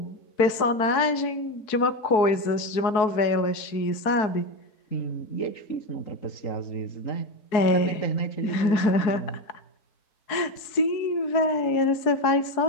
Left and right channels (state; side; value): late; right; 4.6 ms